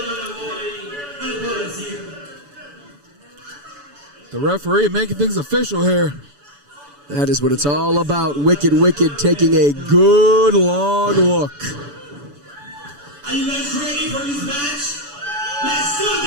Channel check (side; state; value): left; late; 7.0 ms